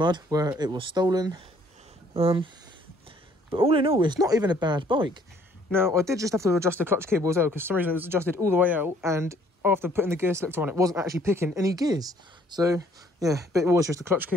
where it was stolen. But all in all, it's not even a bad bike. Now, I did just have to adjust the clutch cable as well, because for some reason it was adjusted all the way out, and after putting the gear selector on, it wasn't actually picking any gears. So, yeah, but it was just the clutch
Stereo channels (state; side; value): normal; both; correlation 0.61